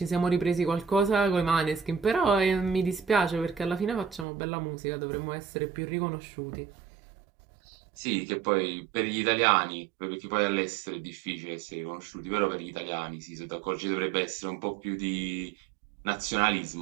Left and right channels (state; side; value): drops out; left; at 4.2 s